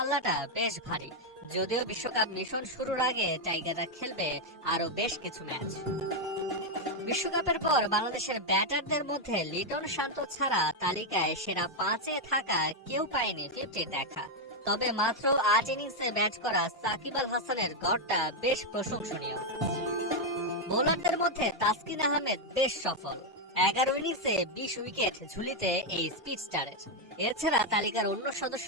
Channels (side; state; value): both; normal; correlation 0.02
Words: বেশ ভারী। যদিও বিশ্বকাপ মিশন শুরুর আগে টাইগাররা খেলবে আরো বেশ কিছু ম্যাচ। বিশ্বকাপের পর বাংলাদেশের ব্যাটারদের মধ্যে লিটন শান্ত ছাড়া তালিকায় সেরা 5-এ থাকা কেউ পায়নি 50 দেখা। তবে মাত্র 8 ইনিংসে ব্যাট করা সাকিব আল হাসানের গড়টা বেশ প্রশংসনীয়। বোলারদের মধ্যে তাসকিন আহমেদ বেশ সফল। 11 ইনিংসে 20 উইকেট ঝুলিতে এই স্পিড স্টারের। এছাড়া তালিকার অন্য